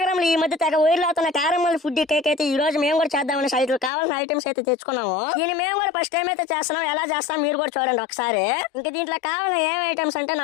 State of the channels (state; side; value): drops out; right; at 3.9 s